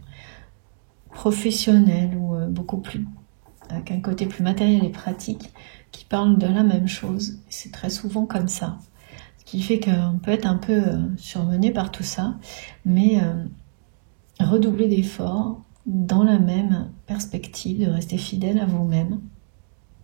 professionnelles ou beaucoup plus, avec un côté plus matériel et pratique, qui parlent de la même chose. C'est très souvent comme ça, ce qui fait qu'on peut être un peu surmené par tout ça, mais redoubler d'efforts dans la même perspective, de rester fidèle à vous-même,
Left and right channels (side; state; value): left; silent; digital silence